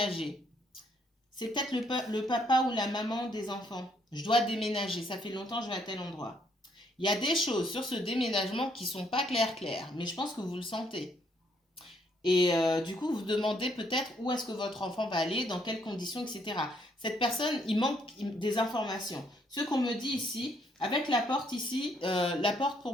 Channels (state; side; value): normal; both; correlation 0.69